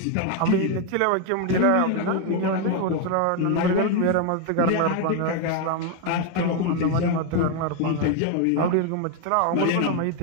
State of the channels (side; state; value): both; different; correlation 0.01